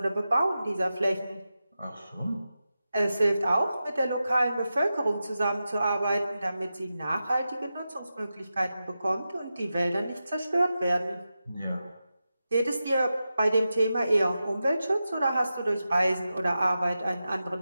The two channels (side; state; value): both; inverted; correlation -0.91